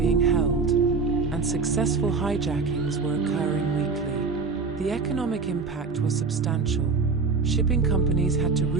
held, and successful hijackings were occurring weekly. The economic impact was substantial. Shipping companies had to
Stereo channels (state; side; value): quieter; left; 4.5 dB